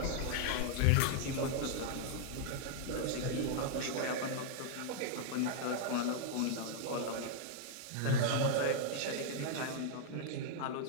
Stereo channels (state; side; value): different; both; correlation 0.00